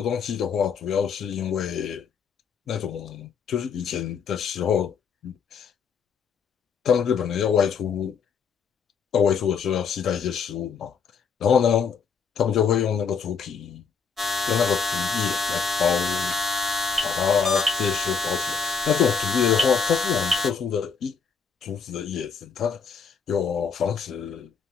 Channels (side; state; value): right; quieter; 6.0 dB